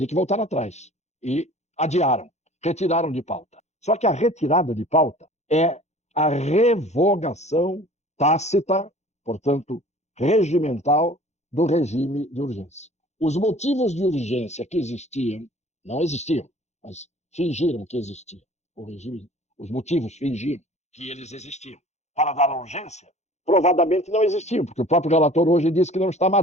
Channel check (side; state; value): right; late; 0.33 ms